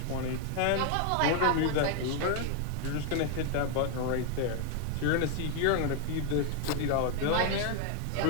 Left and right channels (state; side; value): different; both; correlation 0.00